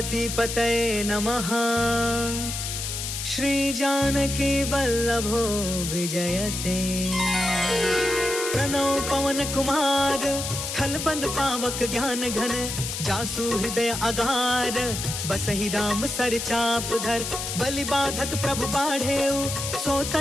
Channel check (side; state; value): left; noise; hiss, 4 dB below the sound